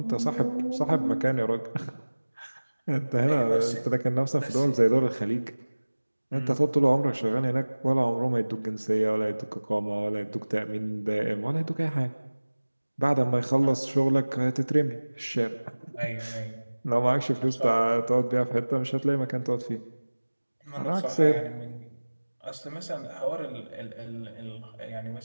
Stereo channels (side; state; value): both; inverted; correlation -1.00